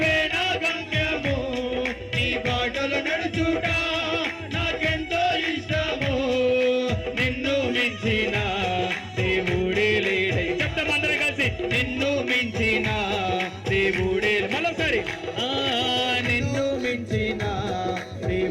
నా గమ్యము నీ బాటలు నడుచుట నాకెంతో ఇష్టము నిన్ను మించిన దేవుడే లేడై చెప్తాం అందరం కలిసి నిన్ను మించిన దేవుడే మరోసారి నిన్ను మించిన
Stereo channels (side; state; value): both; identical; correlation 1.00